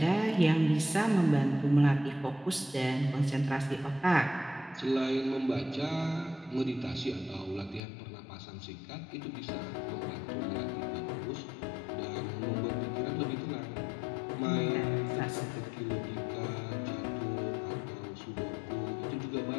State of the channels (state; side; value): drops out; right; at 7.8 s